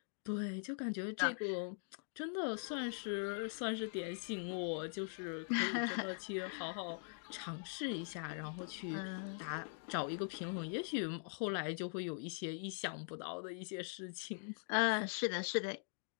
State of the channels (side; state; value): right; silent; digital silence